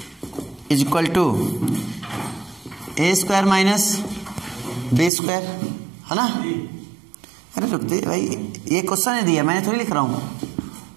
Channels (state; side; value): drops out; left; at 5.1 s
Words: is equal to A square minus B square, है ना? अरे रुकते भाई, ये क्वेश्चन ने दिया, मैंने थोड़ी लिख रहा हूं।